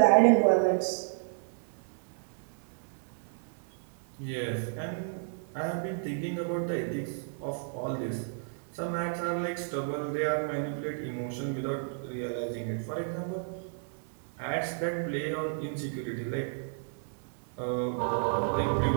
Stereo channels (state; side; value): silent; left; 56 dB below the other